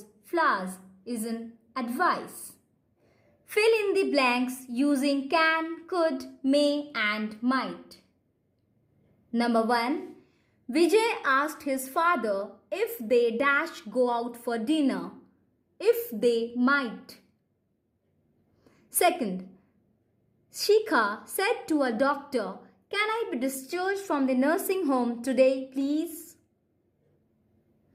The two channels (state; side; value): identical; both; correlation 1.00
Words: flowers is an advice. Fill in the blanks using can, could, may and might. Number 1. Vijay asked his father if they dash go out for dinner, if they might. Second, Shikha said to a doctor, can I be discharged from the nursing home today, please?